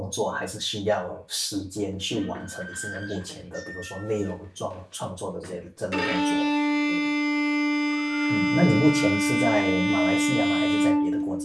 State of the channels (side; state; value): both; identical; correlation 1.00